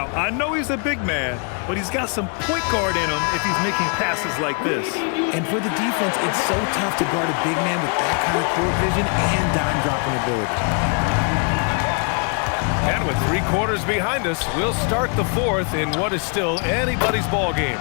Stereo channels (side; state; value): right; quieter; 39.2 dB